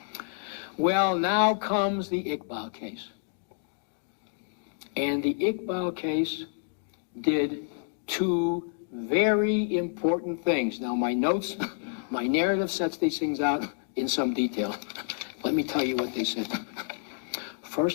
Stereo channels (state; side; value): silent; right; digital silence